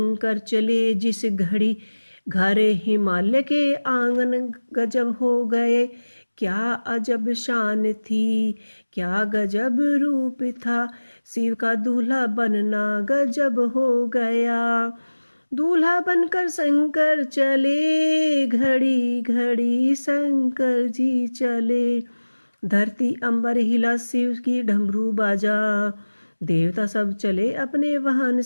चले। जिस घड़ी घर हिमालय के आंगन गजब हो गए। क्या अजब शान थी, क्या गजब रूप था। शिव का दूल्हा बनना गजब हो गया। दूल्हा बनकर शंकर चले, घड़ी घड़ी शंकर जी चले। धरती अंबर हिला शिव की डमरू बाजा, देवता सब चले अपने वाहन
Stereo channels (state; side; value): inverted; both; correlation -1.00